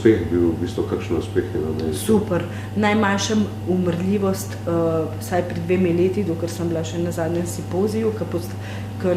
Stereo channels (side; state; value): both; identical; correlation 1.00